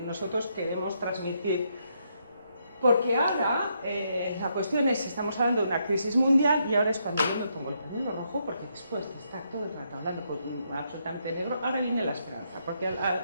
nosotros queremos transmitir. Porque ahora la cuestión es, estamos hablando de una crisis mundial y ahora es cuando yo me pongo el pañuelo rojo, porque después de estar todo el rato hablando con absolutamente negro, ahora viene la esperanza. Porque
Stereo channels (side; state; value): both; inverted; correlation -0.77